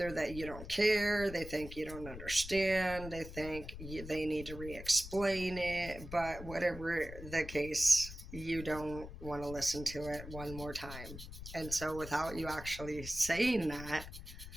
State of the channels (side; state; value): left; noise; rumble, 11 dB below the sound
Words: that you don't care, they think you don't understand, they think they need to re-explain it, but whatever the case, you don't want to listen to it one more time. And so without you actually saying that,